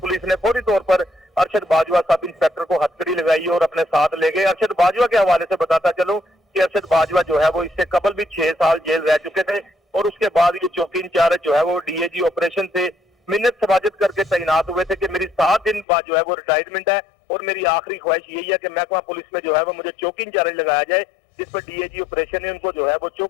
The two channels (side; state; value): right; drops out; at 15.9 s